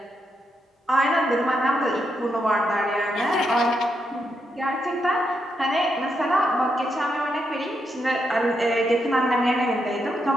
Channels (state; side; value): normal; both; correlation 0.81